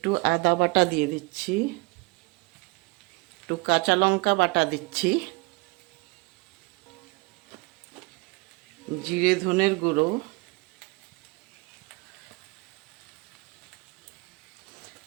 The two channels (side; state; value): left; quieter; 26.4 dB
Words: আদা বাটা দিয়ে দিচ্ছি। একটু কাঁচা লঙ্কা বাটা দিচ্ছি, জিরে ধনের গুঁড়ো,